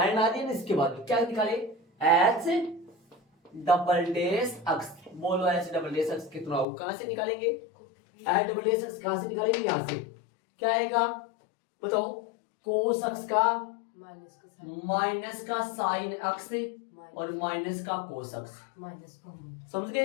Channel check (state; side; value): drops out; right; at 6.7 s